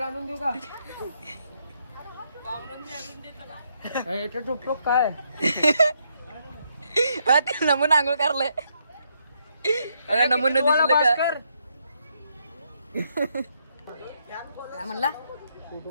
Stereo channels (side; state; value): both; inverted; correlation -0.75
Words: आणून देऊ का याच्या टोपटोप काय ते नमून आंघोळ करलंय अगं नमून दिसलं का काय म्हणला फोटो